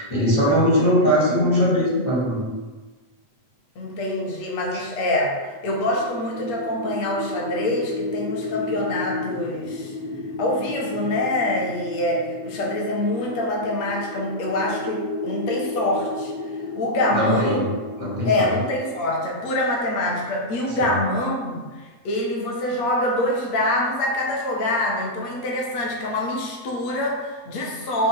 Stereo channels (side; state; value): right; late; 8.4 ms